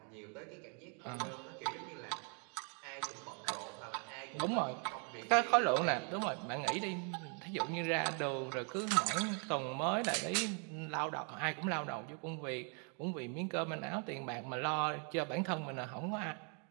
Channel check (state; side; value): quieter; left; 38.8 dB